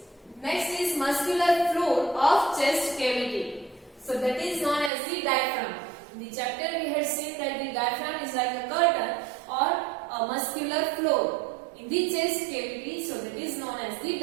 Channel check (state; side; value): drops out; left; at 4.9 s